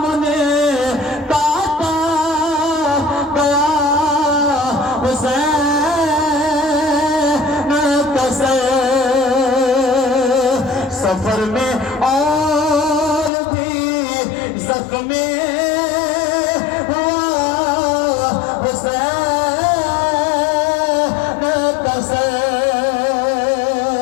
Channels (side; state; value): right; drops out; at 13.3 s